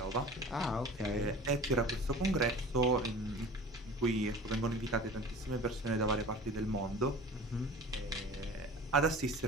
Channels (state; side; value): normal; both; correlation 0.40